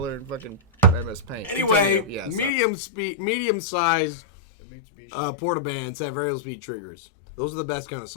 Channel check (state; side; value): drops out; right; at 2.6 s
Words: and fucking MS Paint. Anyway, Yeah, medium size Mitsubishi. portable bands have variable speed triggers. Those are the best kind of